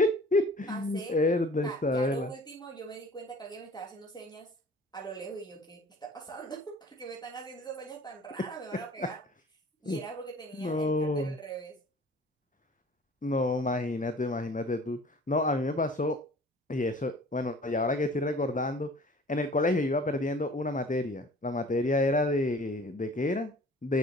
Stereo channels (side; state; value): both; normal; correlation 0.48